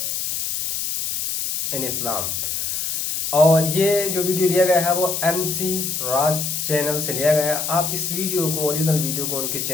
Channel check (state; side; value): noise; left; hiss, 2 dB below the sound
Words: in Islam. और ये जो वीडियो लिया गया है वो MC राज चैनल से लिया गया है। आप इस वीडियो को, ओरिजिनल वीडियो को उनके